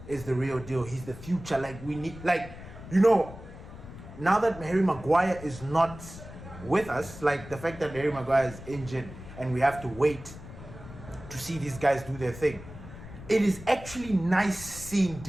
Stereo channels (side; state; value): left; noise; rumble, 14 dB below the sound